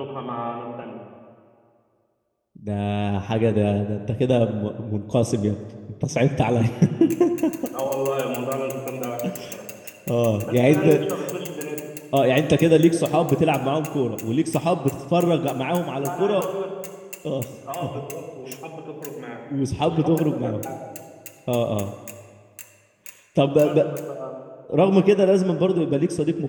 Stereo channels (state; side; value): identical; both; correlation 1.00